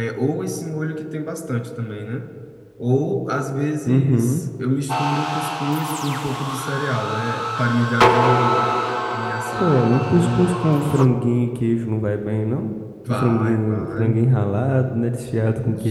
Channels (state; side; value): identical; both; correlation 1.00